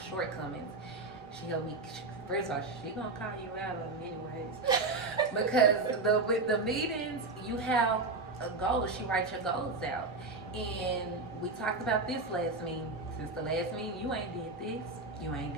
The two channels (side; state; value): left; quieter; 3.5 dB